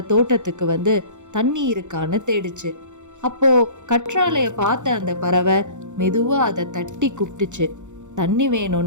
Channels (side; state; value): left; late; 0.85 ms